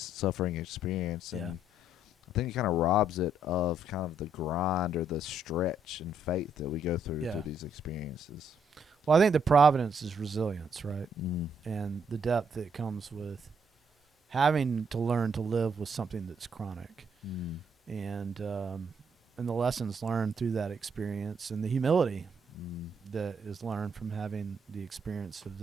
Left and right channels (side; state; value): both; normal; correlation 0.72